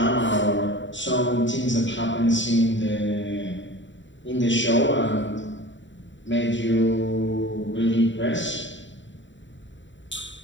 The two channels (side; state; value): right; late; 0.54 ms